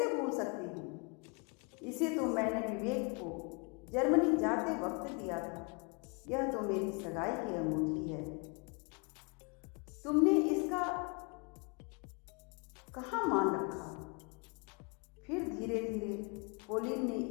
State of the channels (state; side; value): quieter; right; 32.8 dB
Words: भूल सकती हूँ। इसे तो मैंने विवेक को जर्मनी जाते वक्त दिया था। यह तो मेरी सगाई की अंगूठी है। तुमने इसका कहाँ मान रखा? फिर धीरे धीरे पोलिन ने